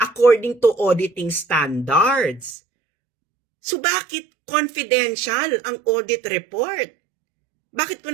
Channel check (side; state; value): left; drops out; at 2.6 s